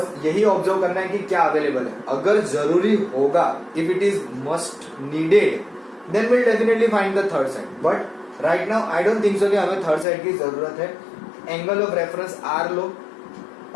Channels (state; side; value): drops out; right; at 10.1 s